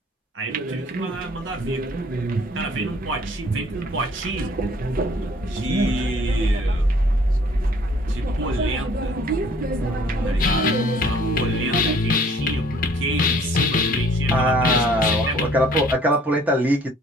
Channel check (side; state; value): both; normal; correlation 0.57